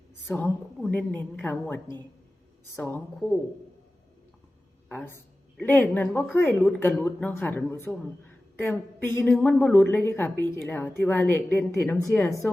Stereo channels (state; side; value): normal; both; correlation 0.96